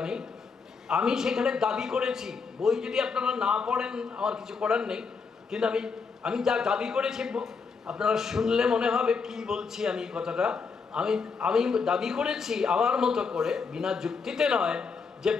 আমি সেখানে দাবি করেছি, বই যদি আপনারা না পড়েন আমার কিছু করার নেই, কিন্তু আমি যা দাবি করেছি আপনারা শুনলে মনে হবে কি বলছি আমি কথাটা। আমি দাবি করেছি আমার মতো করে, বিনা যুক্তিতে নয়, যে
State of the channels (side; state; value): right; quieter; 5.2 dB